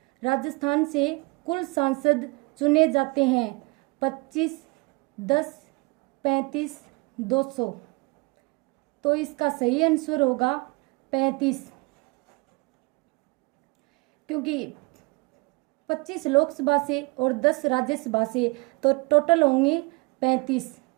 राजस्थान से कुल सांसद चुने जाते हैं 25, 10, 35, 200। तो इसका सही आंसर होगा 35, क्योंकि 25 लोकसभा से और 10 राज्यसभा से, तो टोटल होंगे 35।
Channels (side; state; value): left; quieter; 27.8 dB